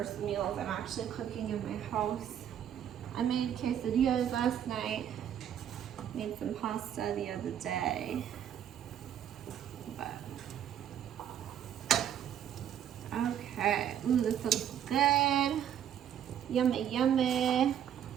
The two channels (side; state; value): left; quieter; 9.7 dB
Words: meals I'm actually cooking in my house. I made quesadillas last night. Made some pasta the other day. But okay. Ooh, this looks good. Yummy, yummy.